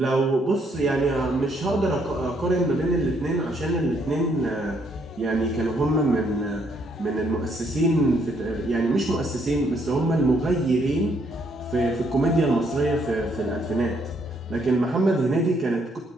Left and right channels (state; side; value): normal; both; correlation 0.71